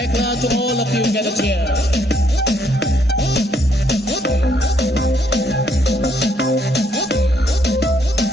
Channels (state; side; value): normal; both; correlation 0.70